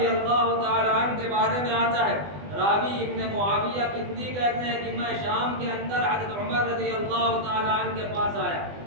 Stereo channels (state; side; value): late; left; 20 ms